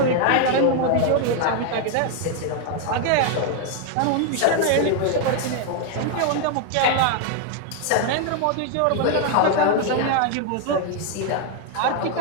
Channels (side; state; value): both; different; correlation 0.00